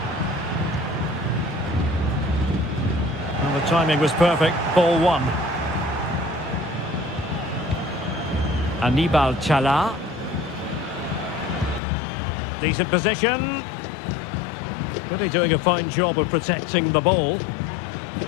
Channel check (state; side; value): drops out; right; at 11.8 s